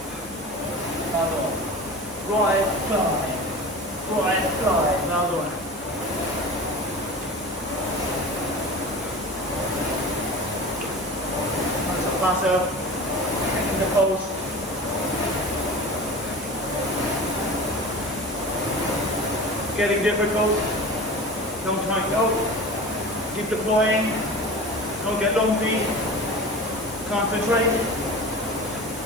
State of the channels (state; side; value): normal; both; correlation 0.34